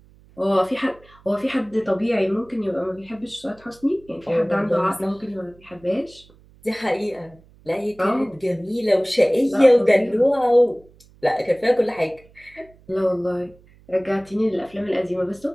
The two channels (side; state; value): right; noise; hum, 27 dB below the sound